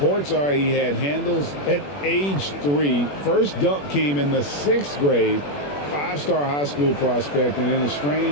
are he had handles at age 3. First dunk came in the 6th grade. 5-star high school prospect, and in a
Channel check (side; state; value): right; late; 21 ms